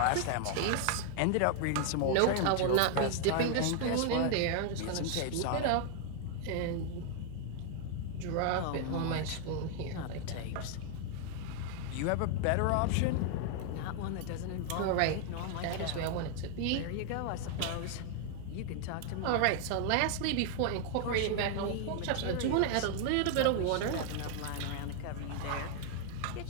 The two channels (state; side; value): different; both; correlation 0.00